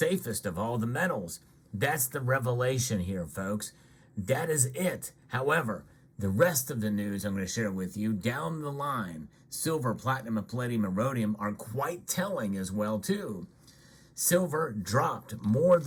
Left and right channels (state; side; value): identical; both; correlation 1.00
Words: of all the metals. That's the revelation here, folks. That is it. However, the rest of the news I'm going to share with you down the line, silver, platinum, and palladium, and rhodium are quite telling as well too. Silver dropped more